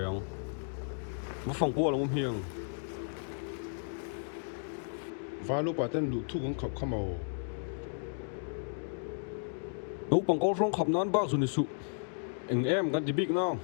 ang mà phòng qua là ngô hiền và lúc bà tên lụt thu cũng khóc khăm màu lúc bằng câu song khắp nón bao rồi nè sụ anh em gần thì big nào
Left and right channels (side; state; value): right; silent; digital silence